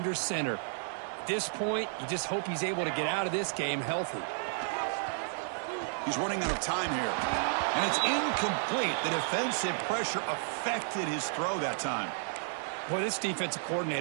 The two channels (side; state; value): left; silent; digital silence